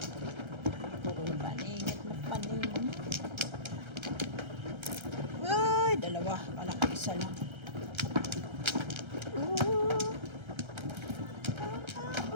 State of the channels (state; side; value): late; left; 1.3 ms